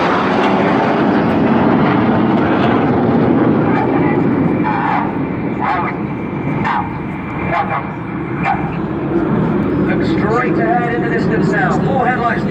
Look straight ahead in the distance now, 4 headlights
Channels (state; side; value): identical; both; correlation 1.00